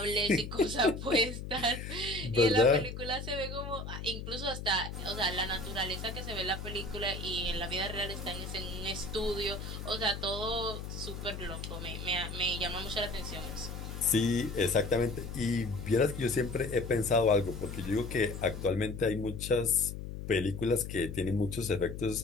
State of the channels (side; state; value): left; noise; hum, 8 dB below the sound